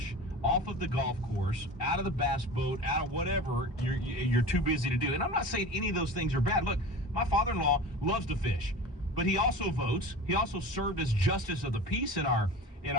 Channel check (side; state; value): both; normal; correlation 0.34